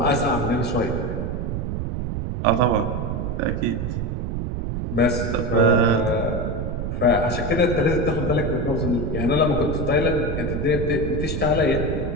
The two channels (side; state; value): right; noise; rumble, 3 dB below the sound